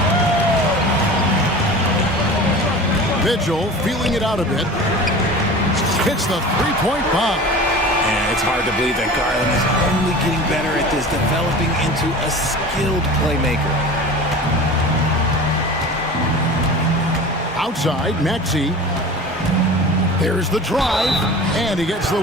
Mitchell feeling it out a bit. Hits the three-point bomb. And it's hard to believe that Garland is only getting better at this, developing into a skilled playmaker. Outside, Maxey. There's the drive, and he gets the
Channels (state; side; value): normal; both; correlation 0.36